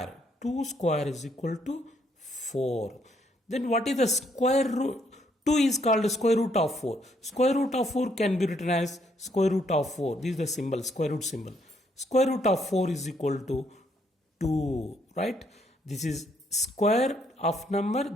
2 square is equal to 4. Then what is the square root? 2 is called square root of 4. Square root of 4 can be written as square root of 4. This is the symbol, square root symbol. Square root of 4 is equal to 2. Right? This is square of number.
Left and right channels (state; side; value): normal; both; correlation 0.71